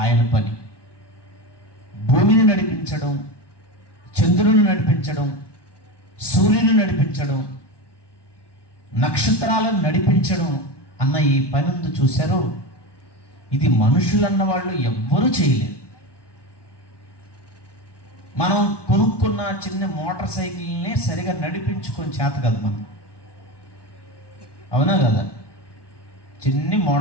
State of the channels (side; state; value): right; late; 1.2 ms